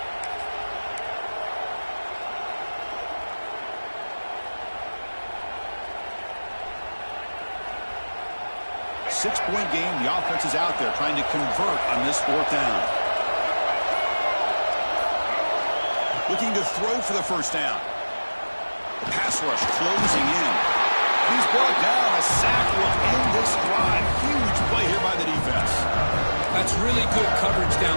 Six-point game. The offense is out there trying to convert on this 4th down. Looking to throw for the 1st down. The pass rush closing in. He's brought down. A sack will end this drive. Huge play here by the defense. That's really good coverage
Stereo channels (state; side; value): inverted; both; correlation -1.00